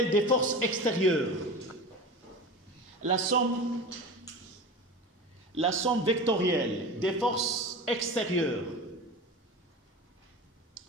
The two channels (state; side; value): normal; both; correlation 0.31